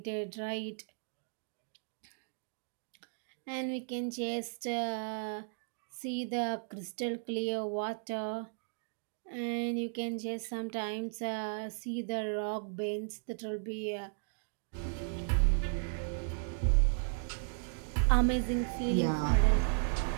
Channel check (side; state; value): left; silent; digital silence